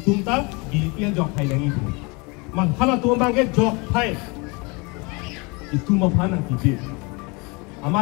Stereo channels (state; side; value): quieter; right; 28.6 dB